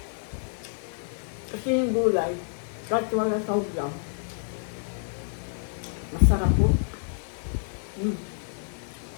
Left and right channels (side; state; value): right; silent; 58 dB below the other